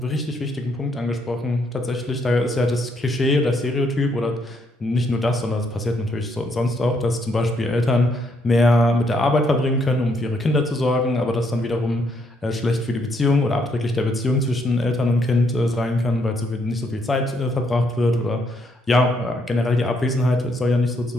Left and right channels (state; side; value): normal; both; correlation 0.73